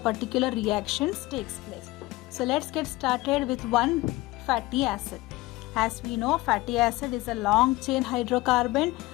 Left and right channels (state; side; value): quieter; right; 19.8 dB